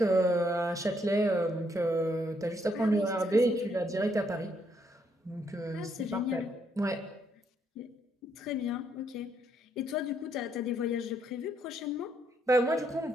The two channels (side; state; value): both; normal; correlation 0.73